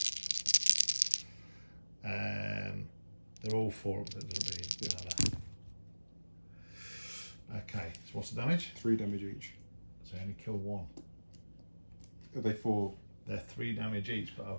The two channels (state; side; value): inverted; both; correlation -1.00